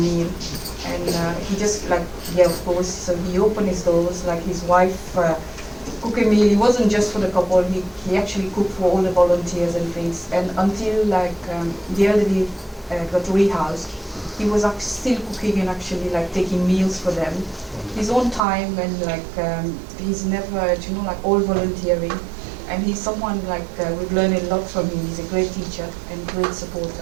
And he just like, yeah, of course. So he opened his doors, like his wife cooked a meal. It wasn't just for the couple. He actually cooked for all the volunteers and things. And until like the elderly got rehoused, he was still cooking and actually like taking meals for them. His own time, and like he's never, you know, like all volunteering. And he's someone like we've learned a lot from him. He's a great teacher and great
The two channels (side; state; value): left; drops out; at 18.4 s